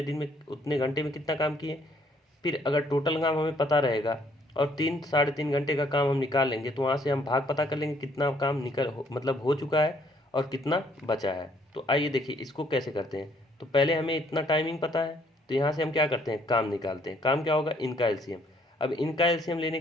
दिन में उतने घंटे में कितना काम किए। फिर अगर टोटल काम हमें पता रहेगा और 3 घंटे का काम हम निकाल लेंगे तो वहाँ से हम भाग पता कर लेंगे कितना काम मतलब हो चुका है और कितना बचा है। तो आइए देखिए इसको कैसे करते हैं। तो पहले हमें इतना टाइमिंग पता है, तो यहाँ से हम क्या करते हैं, काम निकालते हैं। काम क्या होगा, इनका एलसीएम। अब इनका एलसीएम लेने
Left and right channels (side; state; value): both; normal; correlation 0.65